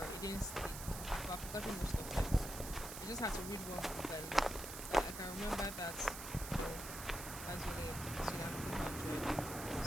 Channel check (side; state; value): right; noise; hiss, 8 dB below the sound